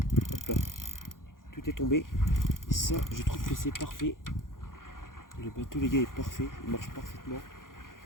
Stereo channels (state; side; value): late; right; 0.90 ms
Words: Hop là. Tout est tombé. Et ça, je trouve que c'est parfait. Le bateau, les gars, est parfait. Il marche parfaitement.